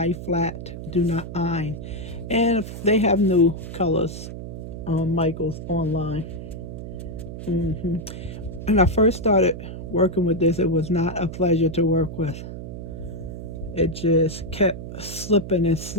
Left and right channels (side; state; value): right; noise; hum, 9 dB below the sound